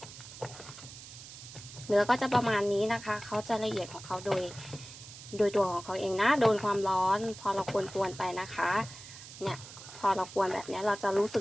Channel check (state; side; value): noise; right; hiss, 15 dB below the sound